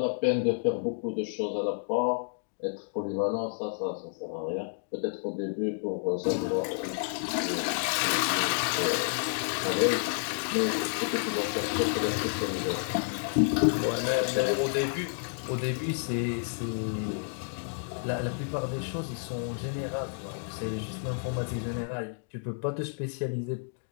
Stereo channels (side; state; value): right; silent; digital silence